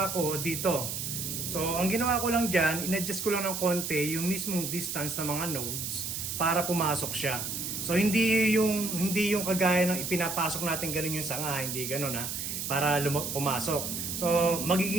ko dito. So, ang ginawa ko lang dyan, in-adjust ko lang ng konti yung mismong distance ng mga nodes para pumasok siya. So, hindi yung kagaya ng ipinapasok natin ganun yung sanga, hindi ganun ha, para pumasok. So,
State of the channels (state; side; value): noise; right; hiss, 4 dB below the sound